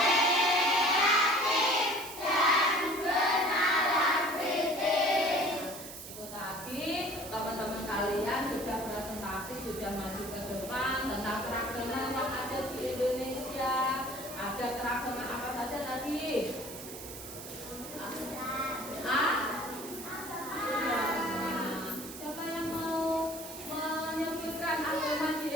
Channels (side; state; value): right; noise; hiss, 12 dB below the sound